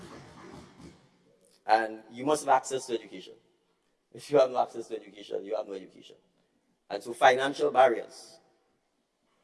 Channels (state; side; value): identical; both; correlation 1.00